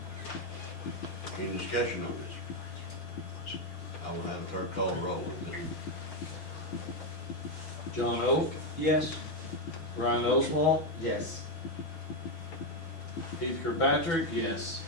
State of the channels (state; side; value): late; right; 6.1 ms